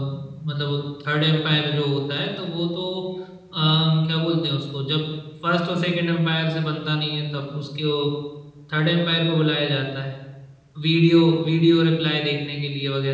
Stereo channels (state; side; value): identical; both; correlation 1.00